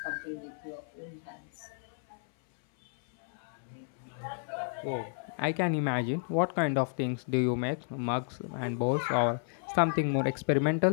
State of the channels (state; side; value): silent; right; 56 dB below the other